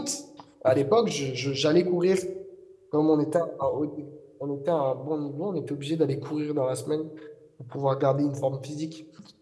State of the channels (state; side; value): identical; both; correlation 1.00